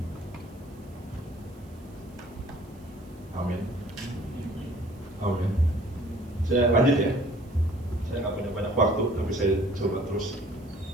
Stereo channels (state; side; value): noise; right; hiss, 30 dB below the sound